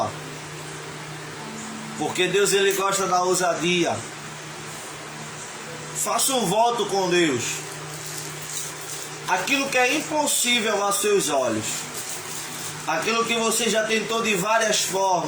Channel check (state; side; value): identical; both; correlation 1.00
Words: porque Deus ele gosta da ousadia. Faça um voto com Deus. Aquilo que é impossível aos seus olhos, aquilo que você já tentou de várias